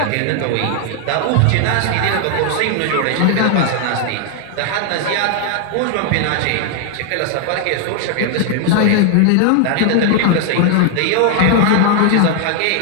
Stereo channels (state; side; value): different; both; correlation 0.00